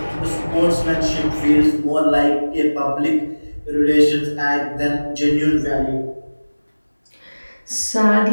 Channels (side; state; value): both; inverted; correlation -1.00